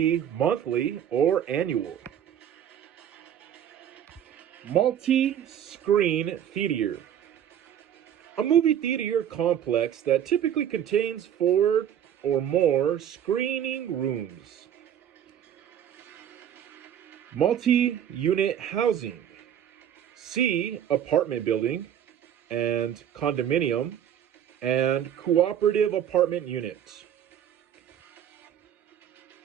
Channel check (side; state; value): left; quieter; 9.8 dB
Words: monthly or annual. Multi-screen theater. A movie theater complex that typically contains 4 or more screening rooms. Multi-unit housing. See apartment building and condominium and cooperative apartment unit.